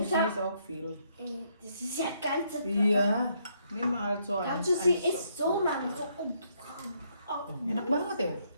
ich PC hab, ist auch viel. das ist ja ganze Iya, nimm halt so Kannst eins. du sie eins isst so lang, so oh. Enak banget ya.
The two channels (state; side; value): inverted; both; correlation -0.72